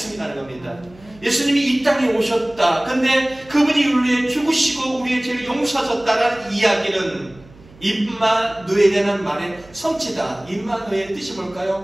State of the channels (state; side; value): noise; right; hum, 24 dB below the sound